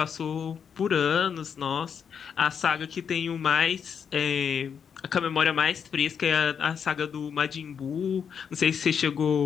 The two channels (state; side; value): quieter; right; 7.2 dB